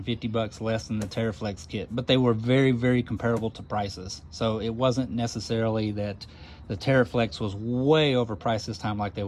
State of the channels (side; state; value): both; identical; correlation 1.00